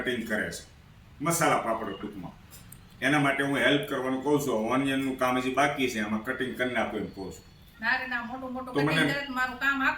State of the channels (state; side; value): identical; both; correlation 1.00